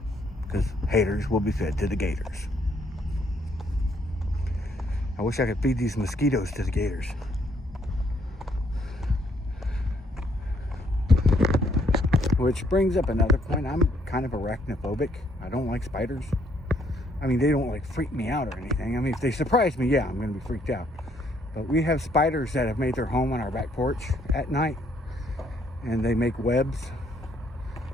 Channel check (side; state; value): both; normal; correlation 0.69